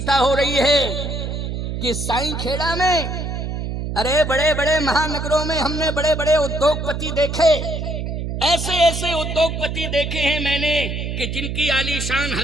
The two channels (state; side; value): noise; right; hum, 4 dB below the sound